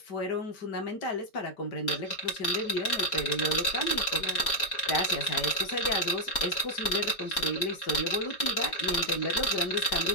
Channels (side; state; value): right; late; 4.3 ms